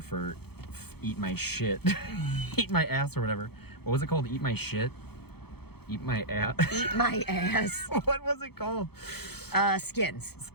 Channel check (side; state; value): right; late; 0.96 ms